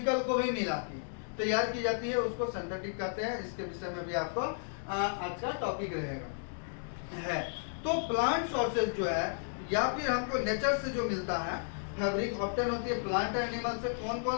को भी मिला के तैयार की जाती है, उसको सिंथेटिक कहते हैं। इसके विषय में भी आपको आज का टॉपिक रहेगा है। तो प्लांट सोर्सेज जो है या फिर हमको नेचर से जो मिलता है फैब्रिक ऑप्टेन होती है प्लांट और एनिमल से। कौन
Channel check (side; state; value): right; silent; digital silence